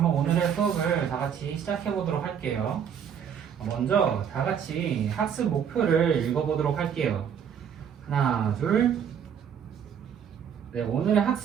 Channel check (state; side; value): quieter; left; 8.0 dB